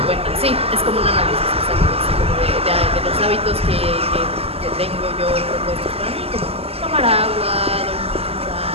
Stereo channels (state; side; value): late; left; 0.29 ms